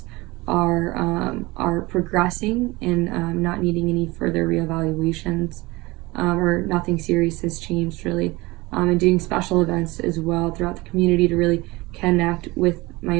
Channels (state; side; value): quieter; left; 21.9 dB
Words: are progressing and not needing any further reevaluations, or nothing serious has changed really, and doing special events as well throughout the community to really connect with